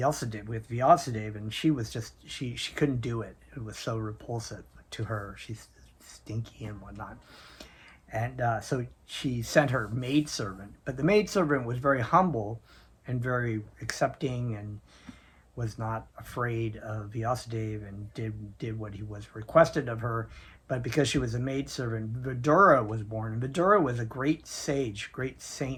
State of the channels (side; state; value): both; identical; correlation 1.00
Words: and she was just she couldn't do it. It was so repulsive to her. She's stinky and whatnot. And so she sent her maidservant, but the maidservant was very humble and very accepting and was not afraid of Vyasadeva and did what he was requested of her. But because she was a maidservant, Vidura was born. And Vidura was a great sage, great